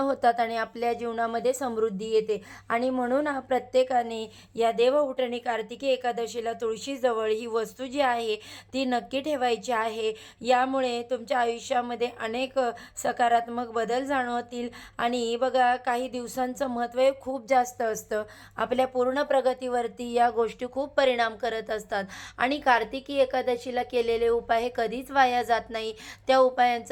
आणि आपल्या जीवनामध्ये समृद्धी येते. आणि म्हणून प्रत्येकाने या देवउठणी कार्तिकी एकादशीला तुळशीजवळ ही वस्तू जी आहे ती नक्की ठेवायची आहे. यामुळे तुमच्या आयुष्यामध्ये अनेक सकारात्मक बदल जाणवतील. आणि बघा, काही दिवसांचं महत्त्व हे खूप जास्त असतं. आपल्या पूर्ण प्रगतीवरती या गोष्टी खूप परिणाम करत असतात. आणि कार्तिकी एकादशीला केलेले उपाय हे कधीच वाया जात नाही. त्या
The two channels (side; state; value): both; identical; correlation 1.00